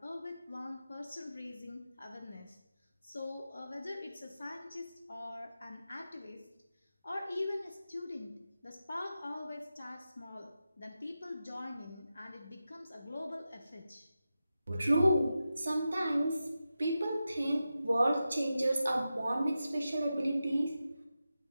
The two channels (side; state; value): both; inverted; correlation -0.91